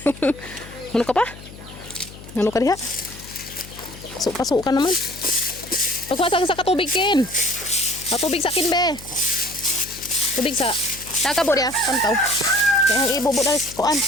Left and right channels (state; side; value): noise; left; hum, 17 dB below the sound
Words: Ano ka pa? Ano ka diha? Pasok ka naman. Pagwasa ka sa katubig, Ken. Katubig sa akin, be. Tubig sa... Nakabo diya, pantaw. Kaya ang ibubo dahil sa kuan,